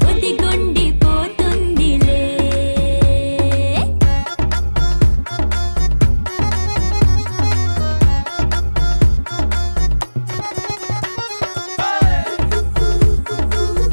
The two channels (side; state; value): both; inverted; correlation -1.00